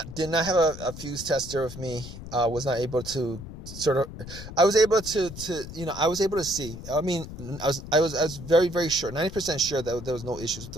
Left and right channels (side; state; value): left; noise; rumble, 12 dB below the sound